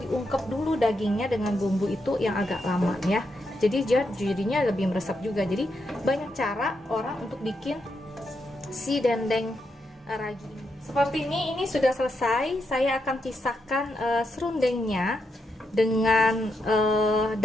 dulu dagingnya dengan bumbu itu yang agak lama ya. Jadi jadinya lebih meresap juga. Jadi banyak cara orang untuk bikin si dendeng ragi. Seperti ini sudah selesai. Saya akan pisahkan serundengnya dengan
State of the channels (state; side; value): normal; both; correlation 0.82